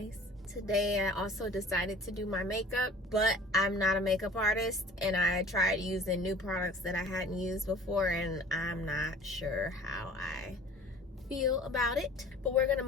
Today I also decided to do my makeup, but I'm not a makeup artist, and I tried using new products that I hadn't used before, and I'm not sure how I feel about it, but we're gonna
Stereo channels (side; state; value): both; normal; correlation 0.46